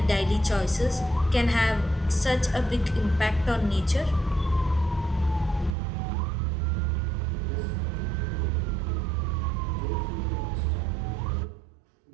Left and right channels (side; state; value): left; drops out; at 5.8 s